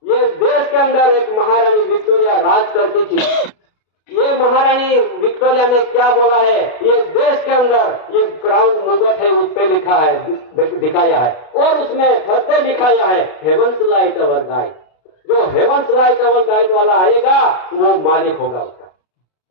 ये देश के अंदर एक महारानी विक्टोरिया राज करती थी। ये महारानी विक्टोरिया ने क्या बोला है? ये देश के अंदर ये क्राउन मुकुट है, उस पे लिखा है, दिखाया है और उसमें फरते लिखाया है हेवंस लाइट अवर गाइड। जो हेवंस लाइट अवर गाइड वाला आएगा वो मालिक होगा उसका।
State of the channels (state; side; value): late; right; 33 ms